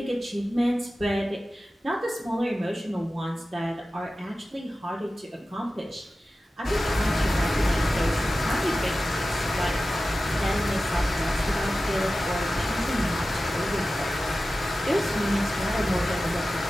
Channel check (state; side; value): normal; both; correlation 0.94